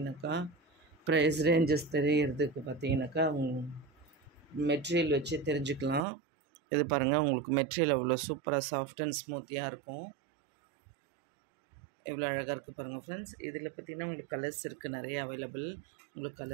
ப்ரைஸ் ரேஞ்சஸ் தெரியறதுக்கு பார்த்தீங்கன்னாக்கா மெட்டீரியல் வச்சு தெரிஞ்சுக்கலாம். இது பாருங்கள், உங்களுக்கு மெட்டீரியல் அவ்வளோ சூப்பராக சாஃப்ட் அண்ட் ஸ்மூத்தியாக இருக்கும். எவ்வளோ அழகாக இருக்குது பாருங்கள் ஃப்ரெண்ட்ஸ். இதில் பார்த்திங்கன்னா உங்களுக்கு கலர்ஸ் இருக்குது நிறைய அவைலபிள். உங்களுக்கு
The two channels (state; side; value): drops out; left; at 6.1 s